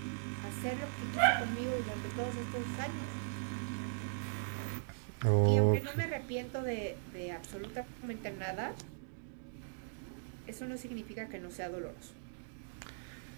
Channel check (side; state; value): left; silent; digital silence